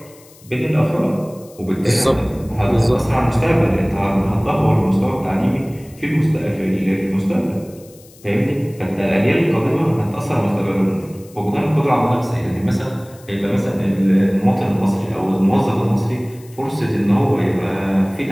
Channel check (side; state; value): left; noise; hiss, 25 dB below the sound